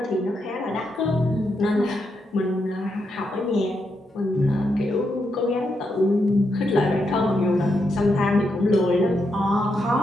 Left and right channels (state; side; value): normal; both; correlation 0.82